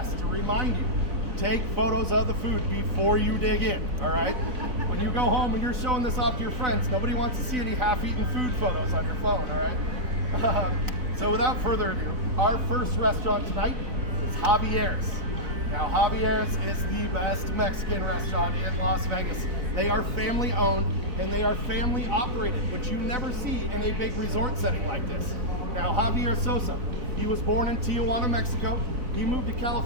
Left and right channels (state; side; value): late; left; 4.0 ms